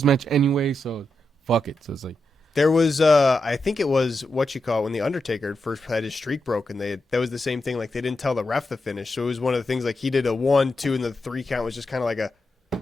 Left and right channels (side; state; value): both; normal; correlation 0.86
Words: match anyway, so fuck it. So it's like. There was, I think it was when The Undertaker first had his streak broken. That was the same thing. Like they didn't tell the ref the finish, so it was one of the things. Like he did a 1, 2, and the 3 count was just kind of like